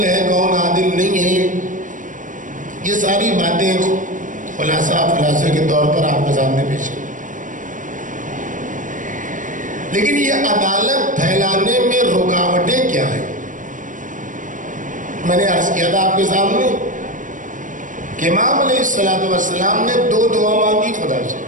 ہے کون عادل نہیں ہے، یہ ساری باتیں خلاصے کے طور پر آپ کے سامنے پیش کی. لیکن یہ عدالت پھیلانے میں رکاوٹیں کیا ہیں؟ میں نے عرض کیا تھا آپ کے سامنے کہ امام علیہ السلام نے دو دعا مانگی خدا سے،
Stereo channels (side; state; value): left; late; 0.38 ms